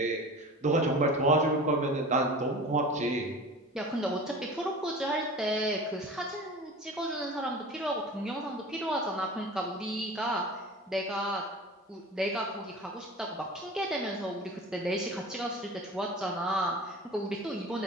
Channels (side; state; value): both; normal; correlation 0.37